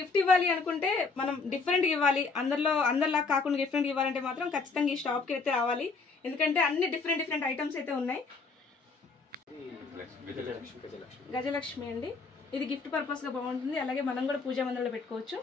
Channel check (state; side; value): quieter; right; 4.3 dB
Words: గిఫ్ట్ ఇవ్వాలి అనుకుంటే, మనం డిఫరెంట్ ఇవ్వాలి, అందరిలా కాకుండా డిఫరెంట్ ఇవ్వాలంటే మాత్రం ఖచ్చితంగా ఈ షాప్కి అయితే రావాలి, ఎందుకంటే అన్ని డిఫరెంట్ ఐటమ్స్ అయితే ఉన్నాయి. గజలక్ష్మి అండి, ఇది గిఫ్ట్ పర్పస్ గా బాగుంటుంది. అలాగే మనం కూడా పూజా మందిరంలో పెట్టుకోవచ్చు.